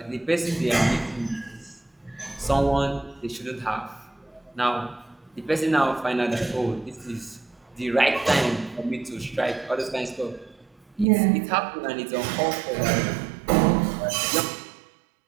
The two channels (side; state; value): left; drops out; at 11.1 s